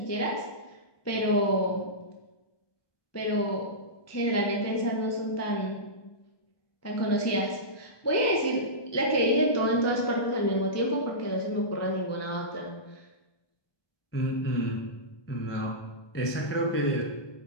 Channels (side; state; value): right; late; 1.2 ms